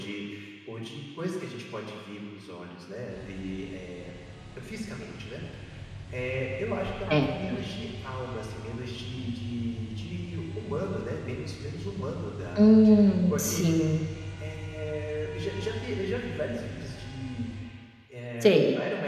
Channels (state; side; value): identical; both; correlation 1.00